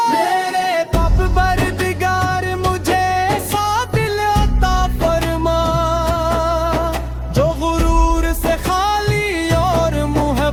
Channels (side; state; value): both; identical; correlation 1.00